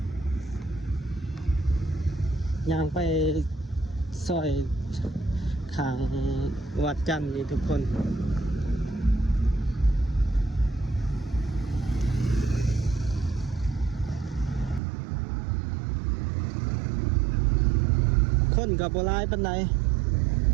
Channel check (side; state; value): left; drops out; at 14.8 s